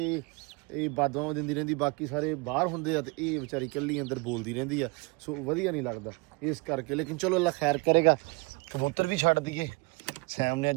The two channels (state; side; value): quieter; left; 27.4 dB